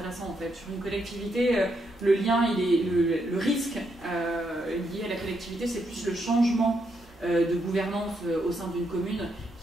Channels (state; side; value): normal; both; correlation 0.79